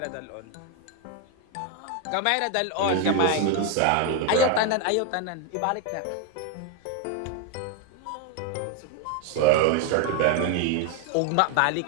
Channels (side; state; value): both; different; correlation 0.01